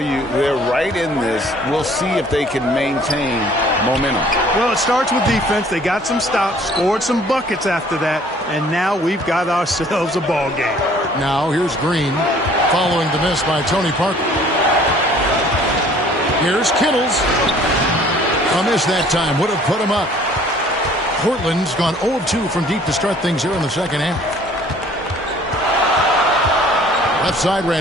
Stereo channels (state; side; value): normal; both; correlation 0.55